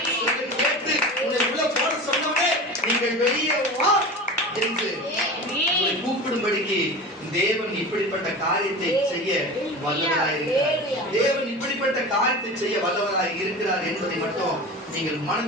கேட்டு உன்னை உள்ள போட சொன்னவனே நீங்கள் வெளியே வா என்று உங்களை கூப்பிடும்படிக்கு தேவன் இப்படிப்பட்ட காரியத்தை செய்ய வல்லவராய் இருக்கிறார். தேவன் இப்படிப்பட்ட காரியத்தை செய்ய வல்லவராய் இருக்கிறார் என்பதை மட்டும் நீங்கள்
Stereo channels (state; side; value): normal; both; correlation 0.32